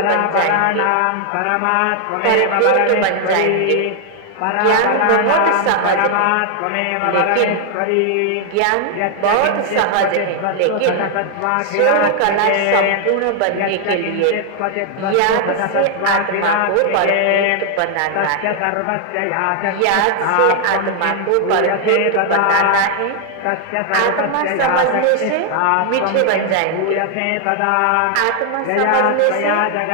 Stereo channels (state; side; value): different; both; correlation 0.00